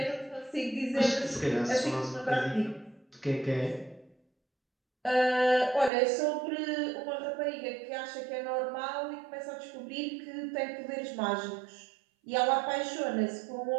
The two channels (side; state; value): left; drops out; at 5.9 s